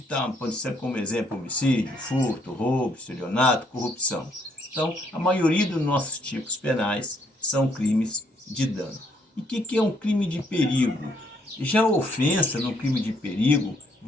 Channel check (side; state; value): both; normal; correlation 0.70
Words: Pode ser como exemplo homicídio, furto, roubo, estelionato, corrupção. Então, a maioria dos nossos tipos penais são crimes de dano. E o que é um crime de perigo? Já a ofensa no crime de perigo